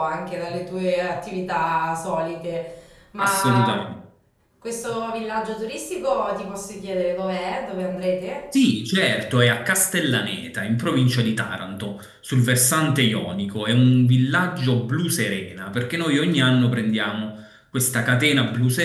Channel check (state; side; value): identical; both; correlation 1.00